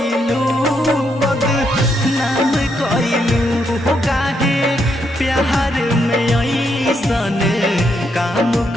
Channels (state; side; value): normal; both; correlation 0.78